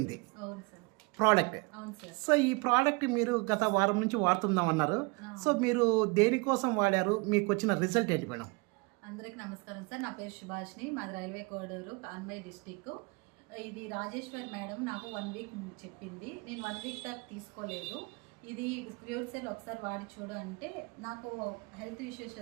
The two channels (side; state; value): left; quieter; 28.1 dB